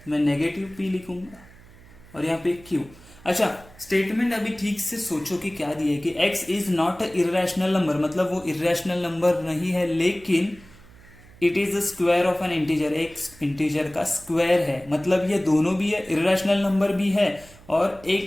मैं नेगेटिव p लिखूंगा और यहाँ पे q। अच्छा स्टेटमेंट अभी ठीक से सोचो कि क्या दिया है कि x is not a irrational number, मतलब वो इरेशनल नंबर नहीं है, लेकिन it is the square of N integer, एक इंटीजर का स्क्वायर है, मतलब ये दोनों भी है, इरेशनल नंबर भी है और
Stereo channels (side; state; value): right; noise; hum, 23 dB below the sound